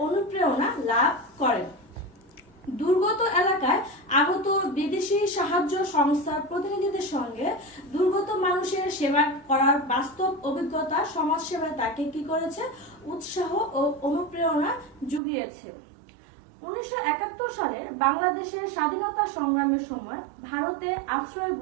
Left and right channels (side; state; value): left; drops out; at 15.2 s